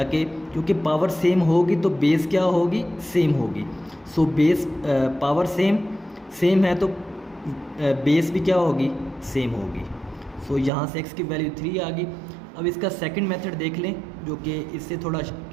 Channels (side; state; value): left; drops out; at 10.7 s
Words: क्योंकि पावर सेम होगी तो बेस क्या होगी, सेम होगी। सो बेस पावर सेम है तो बेस भी क्या होगी, सेम होगी। सो यहाँ से x की वैल्यू 3 आ गई। अब इसका सेकंड मेथड देख लें, जो कि इससे थोड़ा